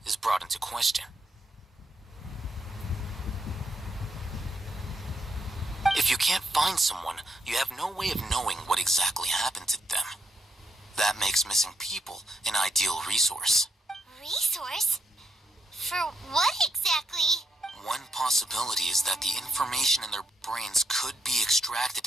is brought into question. If you can't find someone, you have no way of knowing what exactly happened to them. That makes missing people an ideal resource. Resource? For what exactly? One possibility is that the information in their brains could be extracted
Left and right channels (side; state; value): both; normal; correlation 0.78